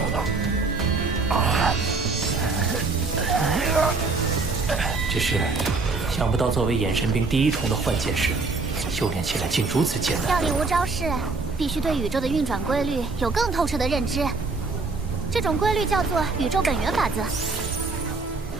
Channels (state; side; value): quieter; left; 4.0 dB